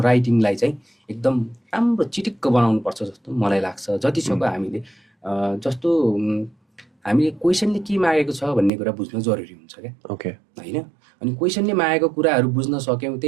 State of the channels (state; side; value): drops out; left; at 8.7 s